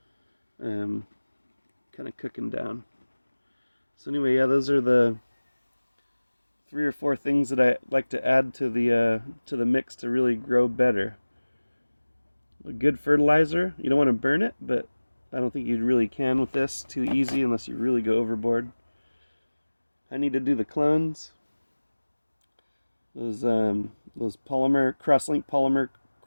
kind of cooking down. So anyway, yeah, those are the 3 or 4 things that I like to add to the mix to really grow better. A good fertilizer. You don't want to burn it, but I don't think you really can with this too easy unless you really go overboard. I need to do the clones. Those polymer cross-link polymer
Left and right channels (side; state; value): both; inverted; correlation -1.00